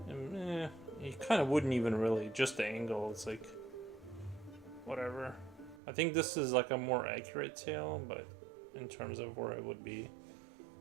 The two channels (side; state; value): left; drops out; at 5.8 s